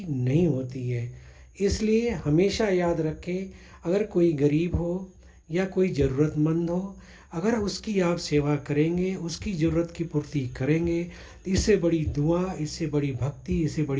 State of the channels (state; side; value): identical; both; correlation 1.00